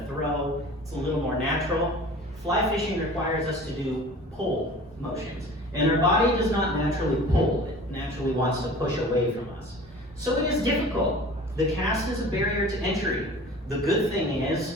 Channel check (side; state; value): both; normal; correlation 0.42